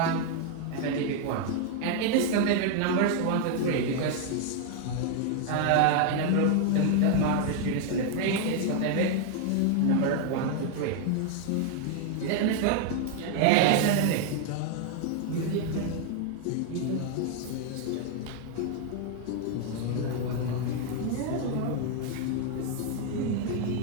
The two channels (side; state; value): both; different; correlation 0.00